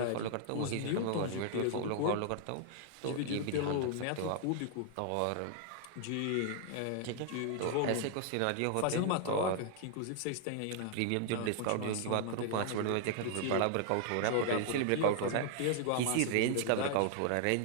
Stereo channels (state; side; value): different; both; correlation 0.00